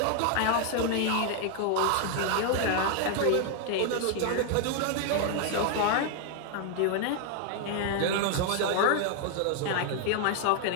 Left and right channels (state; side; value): different; both; correlation 0.00